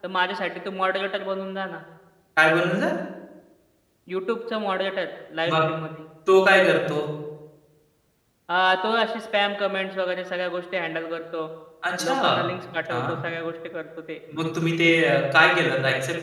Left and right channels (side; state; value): both; identical; correlation 1.00